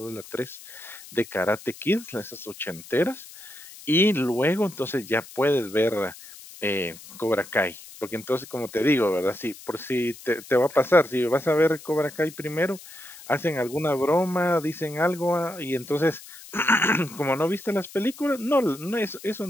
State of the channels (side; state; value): left; noise; hiss, 17 dB below the sound